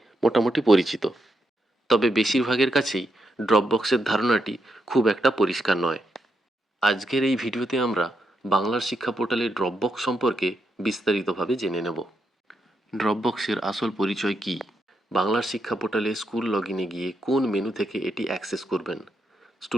মোটামুটি পরিচিত। তবে বেশিরভাগের কাছেই ড্রপবক্সের ধারণাটি খুব একটা পরিষ্কার নয়। আজকের এই ভিডিওতে আমরা বাংলার শিক্ষা পোর্টালে ড্রপবক্স সম্পর্কে বিস্তারিতভাবে জেনে নেব। ড্রপবক্সের আসল পরিচয় কী, বাংলার শিক্ষা পোর্টালে স্কুল লগইনে গিয়ে কোন মেনু থেকে এটি অ্যাক্সেস করবেন,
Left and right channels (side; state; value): both; normal; correlation 0.81